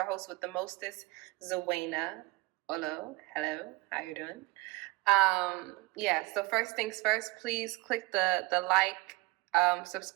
host with the mostest, Zwena. Hello, how you doing? So first things first, please click the like,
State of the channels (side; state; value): left; quieter; 23.2 dB